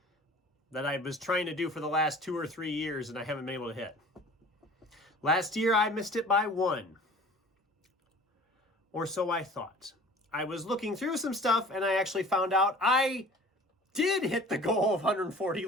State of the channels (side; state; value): both; normal; correlation 0.45